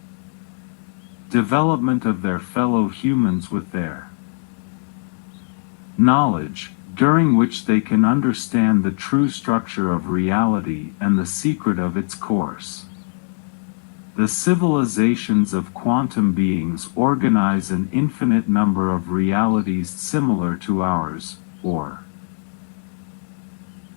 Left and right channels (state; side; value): silent; right; 63 dB below the other